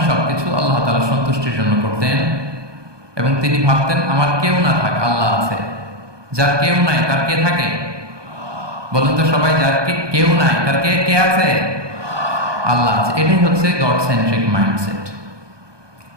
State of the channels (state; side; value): late; left; 1.2 ms